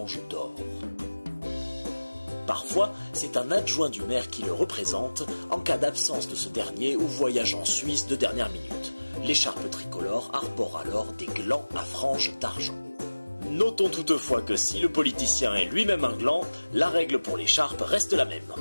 d'or. Parfois, c'est un adjoint du maire qui le représente en cas d'absence de ce dernier ou voyage en Suisse de dernière minute. L'écharpe tricolore arbore alors des glands à franges d'argent. Notons toutefois que si le politicien est lui-même un gland, la règle pour l'écharpe reste la même.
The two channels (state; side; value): inverted; both; correlation -1.00